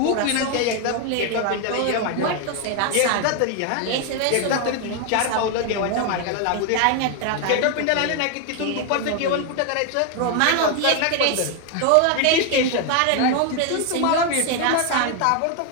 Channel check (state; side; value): different; both; correlation 0.01